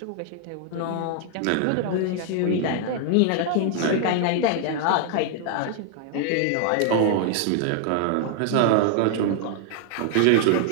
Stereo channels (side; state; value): both; different; correlation 0.00